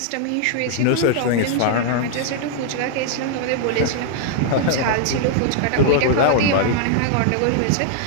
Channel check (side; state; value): both; different; correlation -0.01